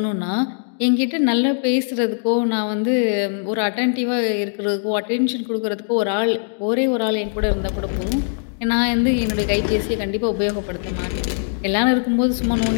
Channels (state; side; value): silent; right; digital silence